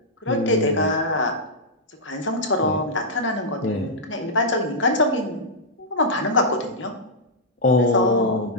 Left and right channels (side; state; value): both; normal; correlation -0.09